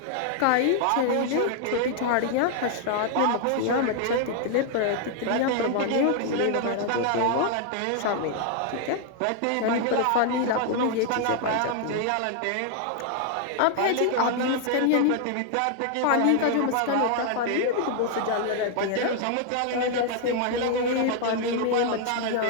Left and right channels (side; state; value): both; different; correlation 0.00